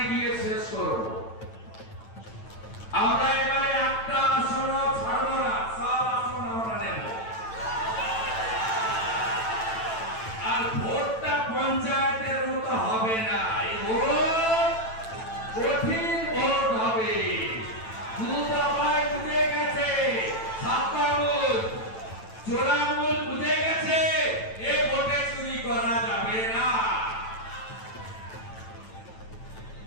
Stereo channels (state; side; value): late; right; 9.0 ms